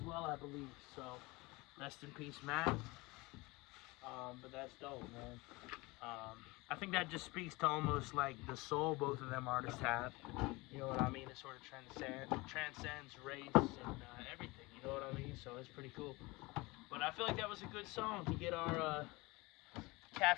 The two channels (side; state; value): right; quieter; 23.4 dB